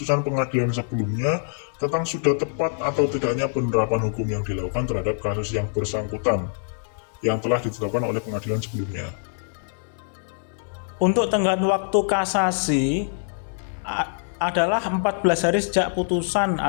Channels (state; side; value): silent; right; 62 dB below the other